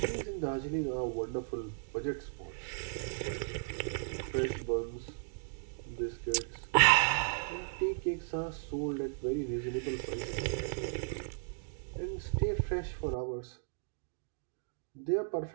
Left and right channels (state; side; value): silent; left; digital silence